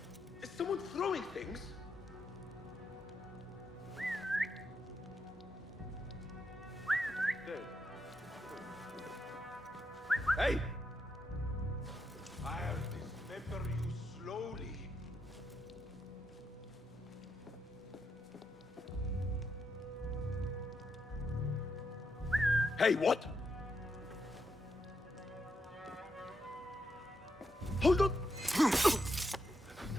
Is someone throwing things? Hey! I'll dismember you slowly. Hey, what? Hold on!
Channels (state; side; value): normal; both; correlation 0.82